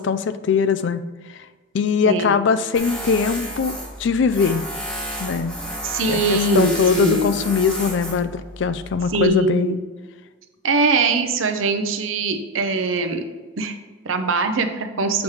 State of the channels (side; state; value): both; normal; correlation 0.11